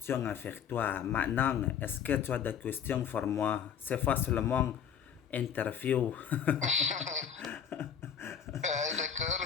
à faire toi. Maintenant, est-ce que tu as des questions pour moi? C'est pas seulement interview.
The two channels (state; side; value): quieter; right; 8.2 dB